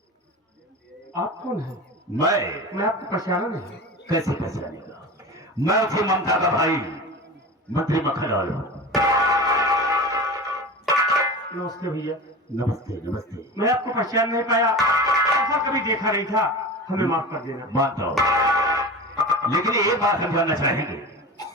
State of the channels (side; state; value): both; normal; correlation 0.31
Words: आप कौन हैं? मैं आपको पहचाना नहीं। कैसे पहचानेगा? मैं उसी ममता का भाई मंत्री मक्खनलाल हूँ। नमस्ते भैया। नमस्ते नमस्ते। मैं आपको पहचान नहीं पाया, ऐसा कभी देखा नहीं था, हमें माफ कर देना। मानता हूँ, लेकिन एक बात हम जानना चाहेंगे,